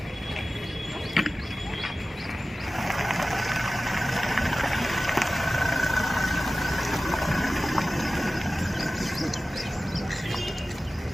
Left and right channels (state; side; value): normal; both; correlation 0.96